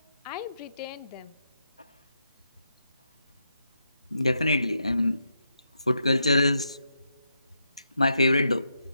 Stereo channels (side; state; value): both; inverted; correlation -0.82